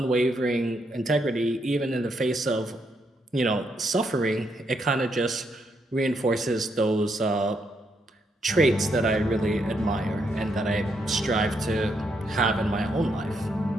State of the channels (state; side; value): normal; both; correlation 0.77